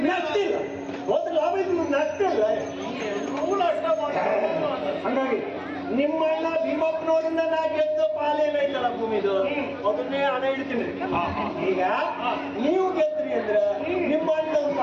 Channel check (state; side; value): identical; both; correlation 1.00